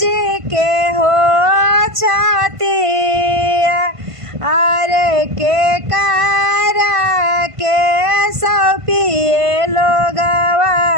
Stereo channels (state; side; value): late; left; 1.5 ms